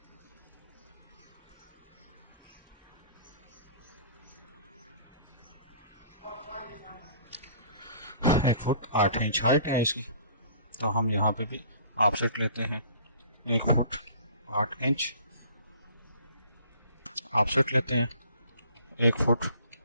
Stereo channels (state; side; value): inverted; both; correlation -0.51